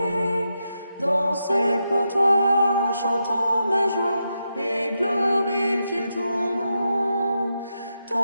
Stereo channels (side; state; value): both; inverted; correlation -0.85